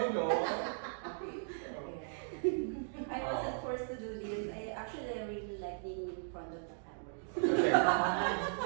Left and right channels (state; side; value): silent; left; digital silence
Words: no? I wasn't forced to do this. I really like being in front of the camera.